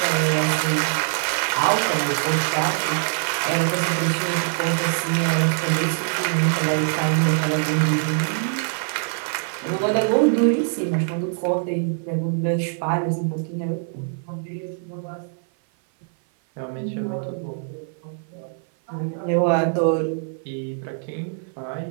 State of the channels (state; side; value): silent; left; 56 dB below the other